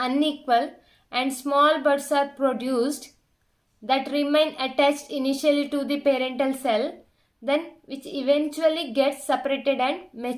and small buds are produced that remain attached initially to the parental cell, then which eventually gets separated and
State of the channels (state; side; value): identical; both; correlation 1.00